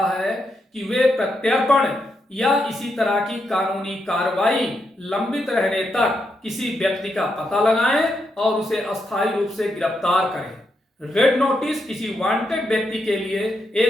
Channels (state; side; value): normal; both; correlation 0.82